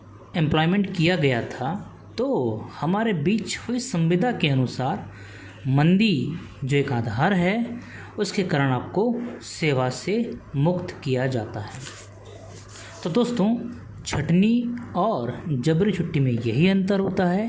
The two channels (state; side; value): identical; both; correlation 1.00